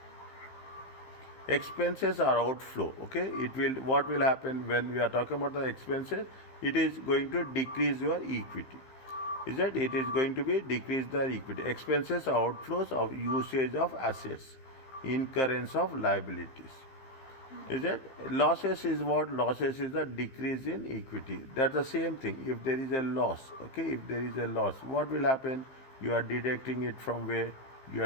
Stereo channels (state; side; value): late; right; 15 ms